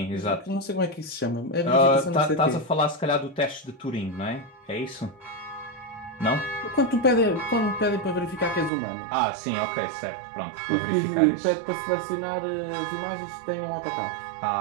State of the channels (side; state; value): left; drops out; at 8.7 s